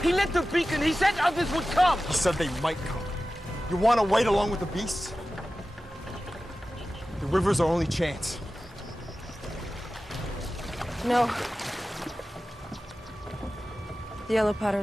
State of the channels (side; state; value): both; normal; correlation 0.95